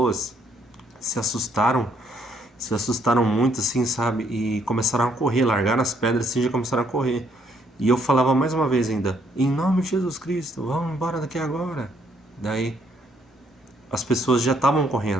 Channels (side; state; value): both; normal; correlation 0.69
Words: se assustaram, se assustaram muito, assim, sabe? E começaram a correr, largaram as pedras assim, já começaram a correr. E eu falava mais uma vez ainda: em nome de Jesus Cristo, vão embora daqui agora. Daí as pessoas já estavam